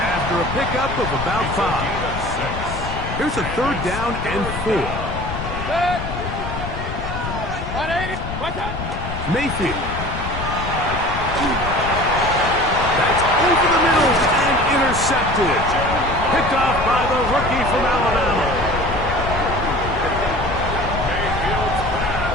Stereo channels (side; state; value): left; noise; rumble, 6 dB below the sound